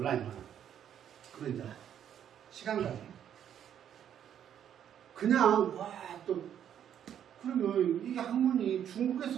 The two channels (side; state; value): left; quieter; 9.6 dB